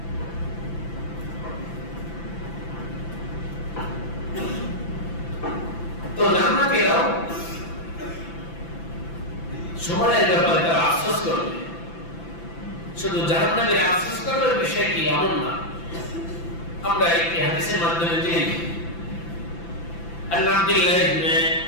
তো জান্নাতীরাও সময়ের ব্যাপারে তারা আফসোস করবে। শুধু জাহান্নামীরা আফসোস করবে বিষয় কি এমন না। আমরা একটি হাদিসের মাধ্যমে জেনে আব্দুল্লাহ ইবনে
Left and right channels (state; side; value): late; right; 5.9 ms